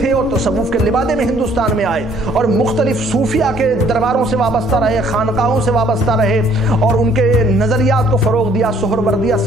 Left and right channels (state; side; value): normal; both; correlation 0.61